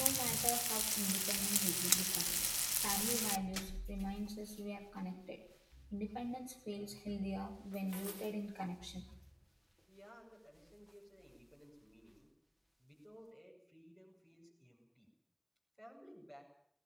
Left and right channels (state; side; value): identical; both; correlation 1.00